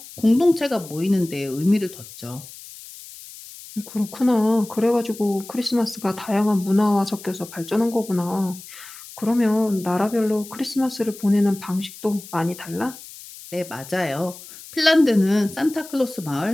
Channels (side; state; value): left; noise; hiss, 16 dB below the sound